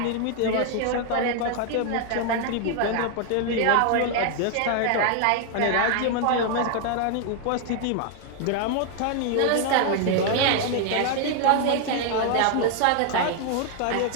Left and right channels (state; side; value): different; both; correlation 0.00